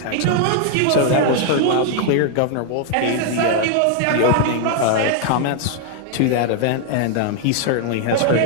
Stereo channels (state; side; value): different; both; correlation 0.00